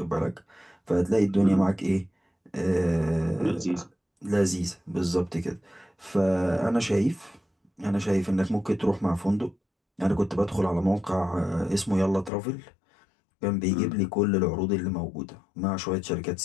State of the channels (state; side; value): drops out; right; at 12.3 s